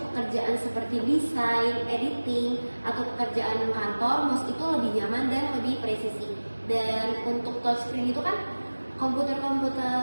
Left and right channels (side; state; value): both; inverted; correlation -1.00